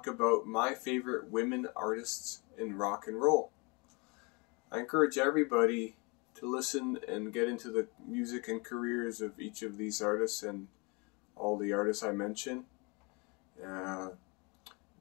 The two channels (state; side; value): quieter; right; 29.7 dB